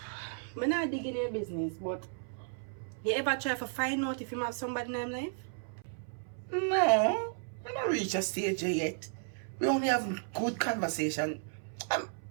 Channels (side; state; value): left; silent; 55 dB below the other